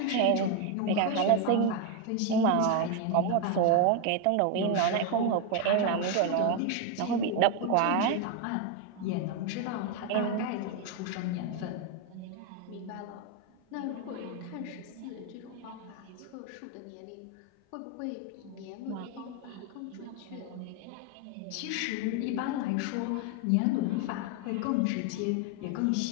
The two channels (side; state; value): both; different; correlation 0.01